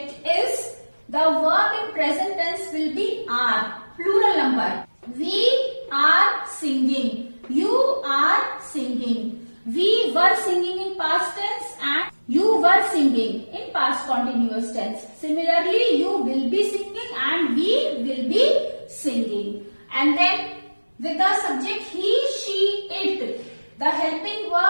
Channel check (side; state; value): both; inverted; correlation -1.00